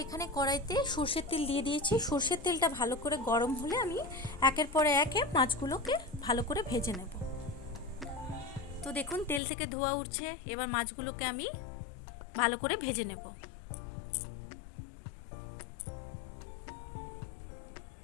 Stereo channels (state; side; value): drops out; right; at 9.4 s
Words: এখানে কড়াইতে সর্ষের তেল দিয়ে দিয়েছি। সর্ষের তেলটা ভালো করে গরম হলে আমি একের পরে একে মাছগুলোকে ভালো করে ভেজে নেব। তো দেখুন তেল থেকে ধোঁয়া উঠছে, এবার মাছগুলোকে আমি ভালো করে ভেজে নেব।